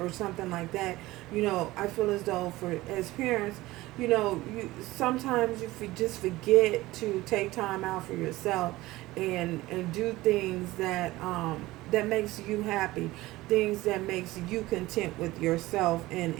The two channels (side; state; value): left; quieter; 18.4 dB